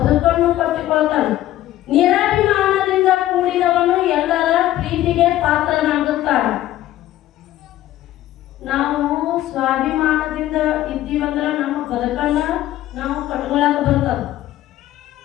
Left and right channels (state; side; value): quieter; right; 14.1 dB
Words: ಕಟ್ಟಿಕೊಳ್ತಾನೆ, ನಿರಾಭಿಮಾನದಿಂದ ಕೂಡಿದವನು ಎಲ್ಲರ ಪ್ರೀತಿಗೆ ಪಾತ್ರನಾಗುತ್ತಾನೆ. ನಾವು ಸ್ವಾಭಿಮಾನದಿಂದ ಇದ್ದೀವಂದ್ರೆ ನಮ್ಮ ಬದುಕನ್ನ ನಾವು ಕಟ್ಕೊಳಕ್ ಬರ್ತದ.